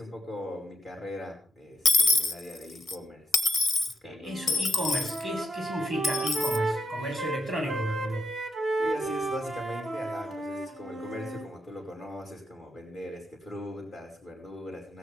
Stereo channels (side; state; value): both; normal; correlation 0.83